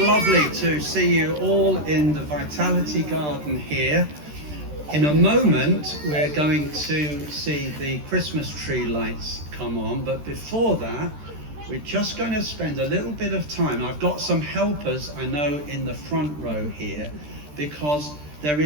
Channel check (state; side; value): late; left; 13 ms